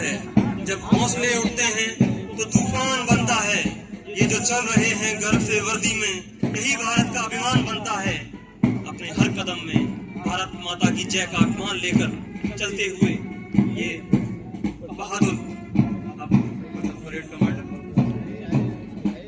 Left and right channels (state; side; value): identical; both; correlation 1.00